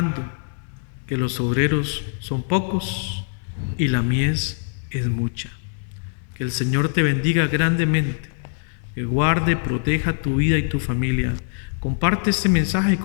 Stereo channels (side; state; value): right; silent; digital silence